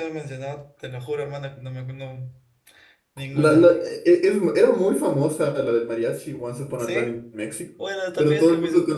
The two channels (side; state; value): both; identical; correlation 1.00